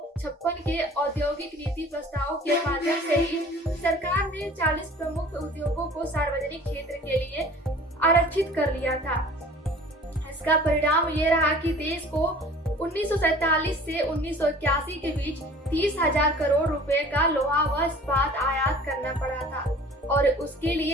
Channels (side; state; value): both; normal; correlation 0.47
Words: के औद्योगिक नीति प्रस्ताव के माध्यम से ही सरकार ने 40 प्रमुख उद्योगों को सार्वजनिक क्षेत्र के लिए आरक्षित कर लिया था। इसका परिणाम ये रहा कि देश को 1947 से 1981 के बीच 30,000 करोड़ रुपए का लोहा व इस्पात आयात करना पड़ा था और उसके